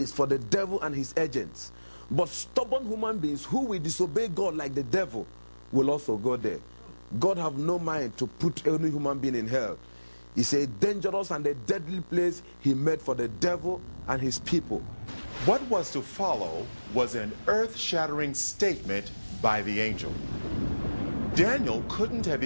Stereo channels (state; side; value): inverted; both; correlation -1.00